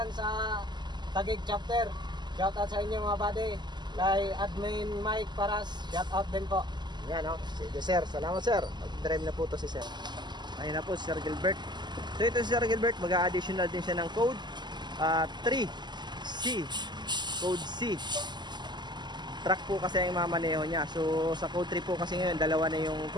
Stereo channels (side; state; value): left; late; 0.21 ms